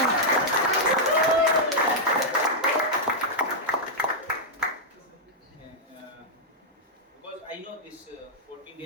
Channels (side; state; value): both; normal; correlation -0.06